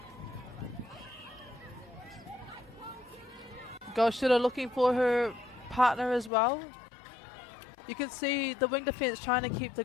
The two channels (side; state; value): right; drops out; at 6.3 s